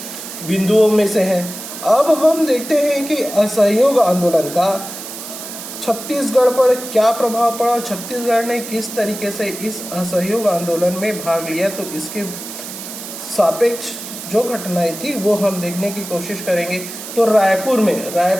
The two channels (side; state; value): right; noise; hiss, 10 dB below the sound